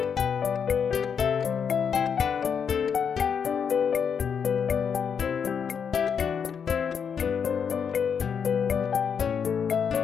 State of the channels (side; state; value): right; quieter; 7.0 dB